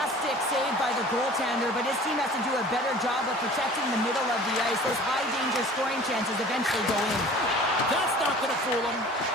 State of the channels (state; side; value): normal; both; correlation 0.45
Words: save by the goaltender, but his team has to do a better job of protecting the middle of the ice. Those high-danger scoring chances eventually go in. That's not going to fool him.